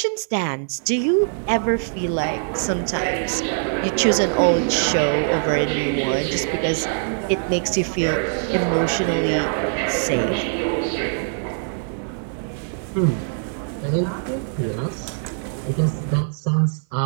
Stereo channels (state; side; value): silent; left; 57 dB below the other